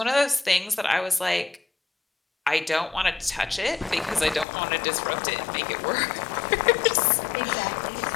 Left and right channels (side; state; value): right; drops out; at 4.5 s